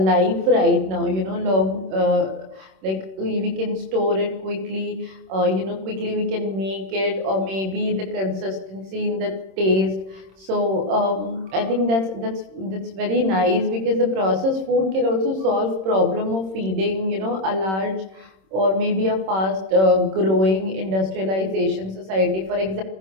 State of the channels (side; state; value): left; late; 26 ms